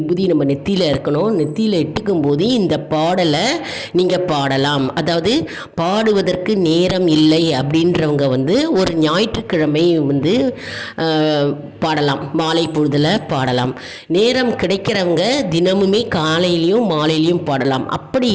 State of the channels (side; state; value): both; identical; correlation 1.00